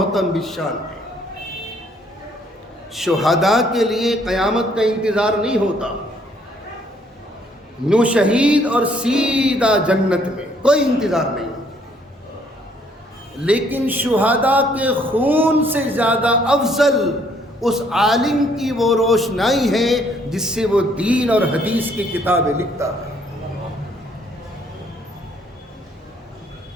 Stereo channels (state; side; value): normal; both; correlation 0.65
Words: بالشان ہے. شہداء کے لیے قیامت کا انتظار نہیں ہوتا. نو شہید اور سیدھا جنت میں کوئی انتظار نہیں ہوتا. لیکن شہداء کے خون سے زیادہ افضل اس عالم کی وہ روشنائی ہے جس سے وہ دین اور حدیث کی کتابیں لکھتا ہے.